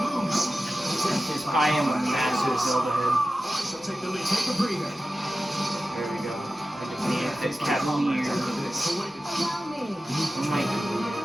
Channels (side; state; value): both; normal; correlation 0.94